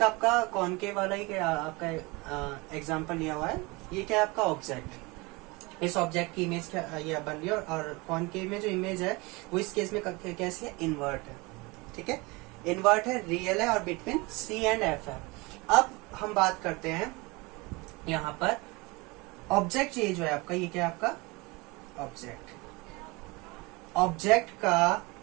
आपका कॉनकेव वाला ही आपका एग्जांपल लिया हुआ है। ये क्या है आपका ऑब्जेक्ट, इस ऑब्जेक्ट की इमेज क्या ये बन रही है, और कॉनकेव में जो इमेज है वो इस केस में कैसी है, इन्वर्ट है। ठीक है, इन्वर्ट है, रियल है और बिटवीन सी एंड एफ है। अब हम बात करते हैं यहाँ पर ऑब्जेक्ट, ये जो है आपका, ये क्या है आपका ऑब्जेक्ट, ऑब्जेक्ट का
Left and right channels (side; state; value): left; quieter; 25.2 dB